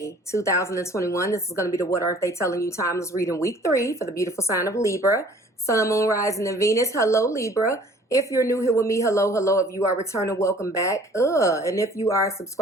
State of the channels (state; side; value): normal; both; correlation 0.52